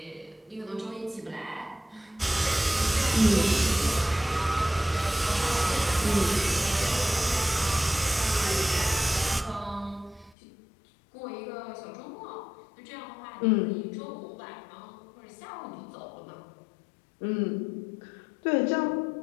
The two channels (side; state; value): right; drops out; at 10.4 s